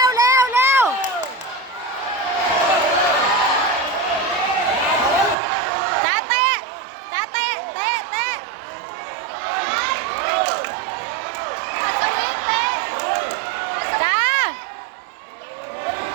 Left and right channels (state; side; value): drops out; left; at 5.4 s